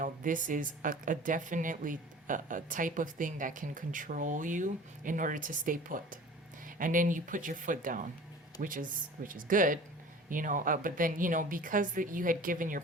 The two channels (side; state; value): both; normal; correlation 0.43